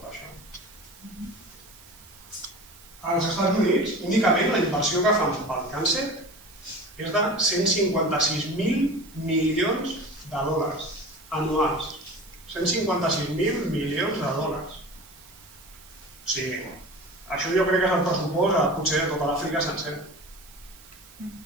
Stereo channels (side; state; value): right; noise; hiss, 23 dB below the sound